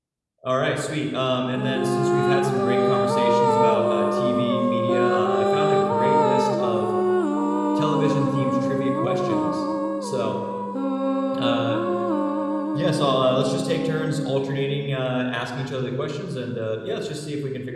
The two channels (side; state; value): both; identical; correlation 1.00